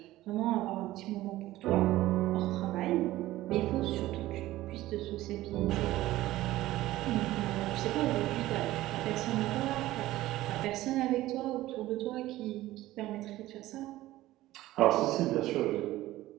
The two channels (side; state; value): left; quieter; 16.2 dB